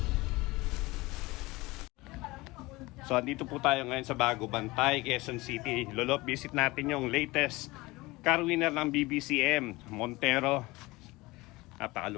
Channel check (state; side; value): quieter; right; 21.6 dB